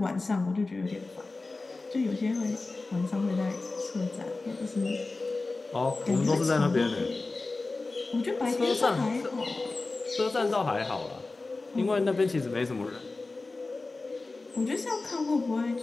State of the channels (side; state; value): right; quieter; 3.5 dB